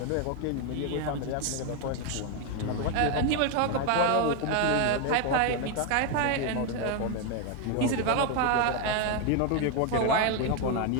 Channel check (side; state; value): both; different; correlation 0.01